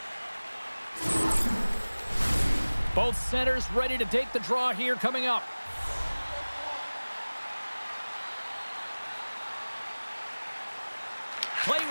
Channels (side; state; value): both; inverted; correlation -1.00